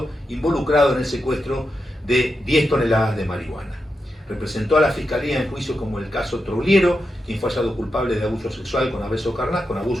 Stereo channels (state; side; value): normal; both; correlation 0.87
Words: involucrado en el secuestro de 10 toneladas de marihuana. Representó a la Fiscalía en juicios como el caso Trouliero, quien fue hallado culpable de abuso sexual con abuso